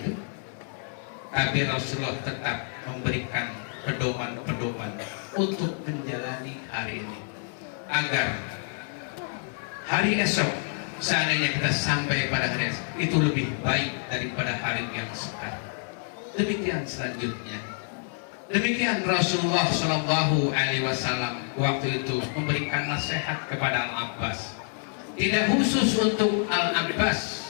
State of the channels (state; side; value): silent; right; 57 dB below the other